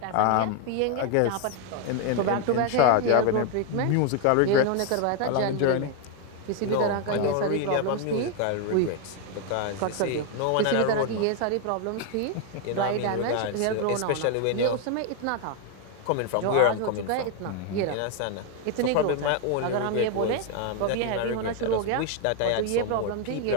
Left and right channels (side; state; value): both; different; correlation 0.01